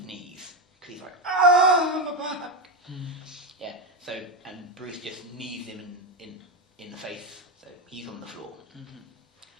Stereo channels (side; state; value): both; normal; correlation 0.12